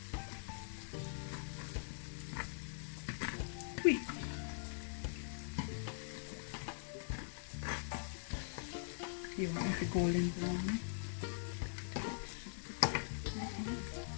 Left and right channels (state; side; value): silent; right; digital silence